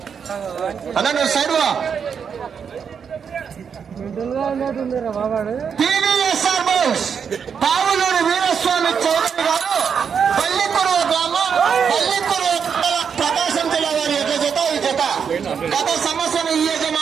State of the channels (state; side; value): quieter; left; 6.9 dB